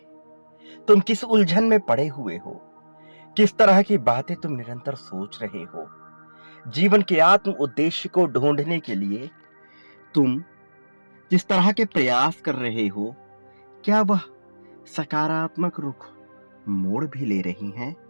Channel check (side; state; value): both; inverted; correlation -1.00